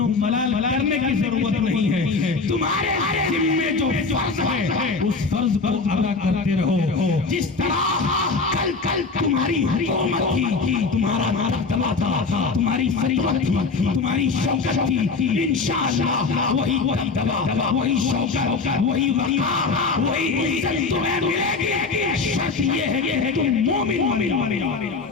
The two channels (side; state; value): right; quieter; 4.3 dB